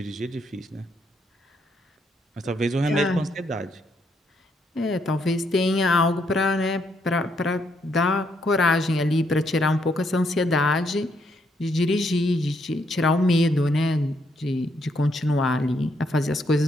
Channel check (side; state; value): both; normal; correlation 0.74